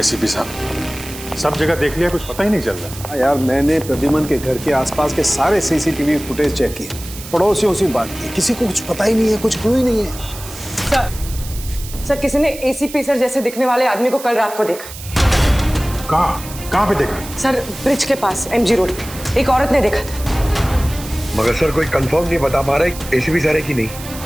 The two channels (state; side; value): noise; right; hiss, 13 dB below the sound